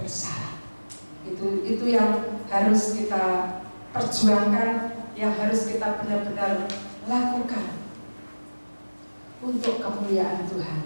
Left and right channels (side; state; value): both; inverted; correlation -1.00